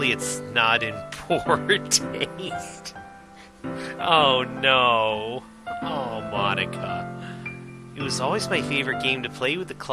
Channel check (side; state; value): both; identical; correlation 1.00